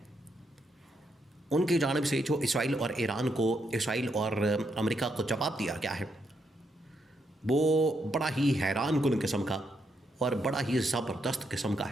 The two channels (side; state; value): both; normal; correlation 0.78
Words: ان کی جانب سے جو اسرائیل اور ایران کو، اسرائیل اور امریکہ کو جواب دیا گیا ہے، وہ بڑا ہی حیران کن قسم کا اور بڑا ہی زبردست قسم کا